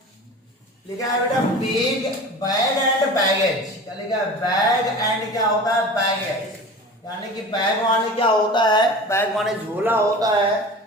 लिखा है बेटा बैग बैग एंड बैगेज। क्या लिखा है? बैग एंड क्या होता है? बैगेज। यानी कि बैग माने क्या होता है? बैग माने झोला होता है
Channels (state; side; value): normal; both; correlation 0.36